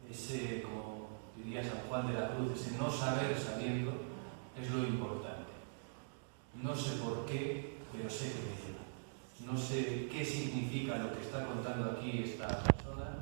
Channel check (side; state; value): left; silent; digital silence